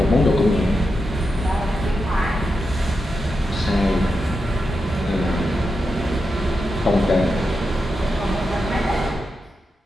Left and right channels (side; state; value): both; normal; correlation 0.88